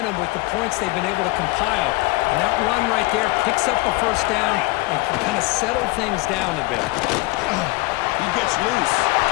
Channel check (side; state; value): right; quieter; 22.6 dB